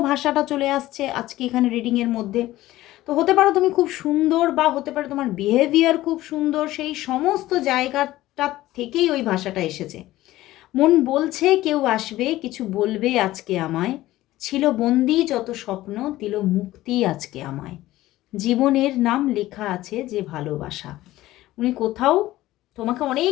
ভাষাটা চলে আসছে আজকে এখানে রিডিংয়ের মধ্যে। তো হতে পারো তুমি খুব সুন্দর, বা হতে পারে তোমার বিহেভিয়ার খুব সুন্দর, সেই সমস্ত জায়গাটা থেকেই ওই ভাষাটা এসেছে। মন বলছে কেউ আসবে, কিছু বলবে আজকে আমায়, ছিল বন্দি যত স্বপ্ন, দিল মুক্তি আজকে আমায়, জীবনের নাম লেখা আছে যে ভালোবাসা। উনি কোথাও তোমাকে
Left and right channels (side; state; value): right; quieter; 16.1 dB